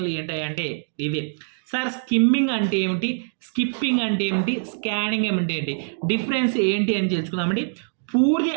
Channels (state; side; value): silent; left; digital silence